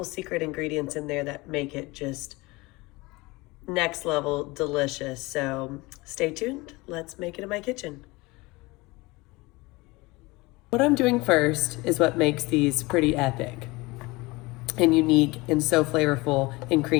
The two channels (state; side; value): quieter; right; 23.0 dB